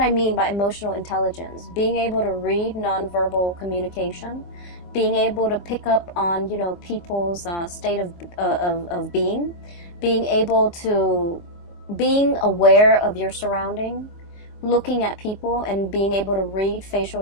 mean by emotional intelligence. Being able to read nonverbal communication, being able to pick up on, you know, people's state of being, being able to, being aware of your surrounding, looking at people and being able to read facial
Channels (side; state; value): right; late; 24 ms